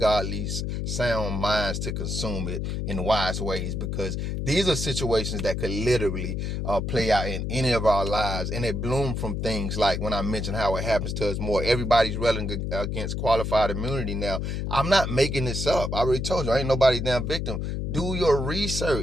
leads sound minds to consume it in wise ways, because these are situations that could literally play out in any of our lives. And it bloomed from things like when I mentioned how it happens to us more. Everybody's railing against qualified immunity now. I'm not making this up. I already told you, I ain't nobody's damn victim. Do your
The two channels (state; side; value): noise; left; hum, 2 dB below the sound